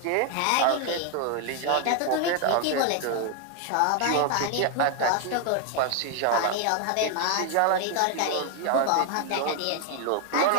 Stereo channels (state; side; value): different; both; correlation 0.00